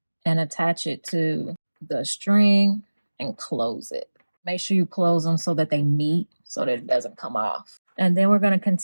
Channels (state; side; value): inverted; both; correlation -1.00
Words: and attach it to the string and close it. Make sure you close them so that they meet, so that it doesn't come off. And then we're going to